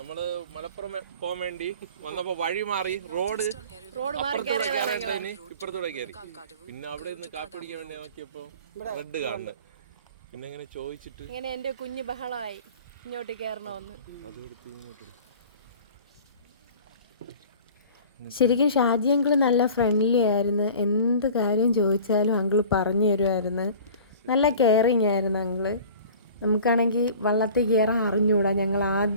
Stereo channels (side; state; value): both; inverted; correlation -0.43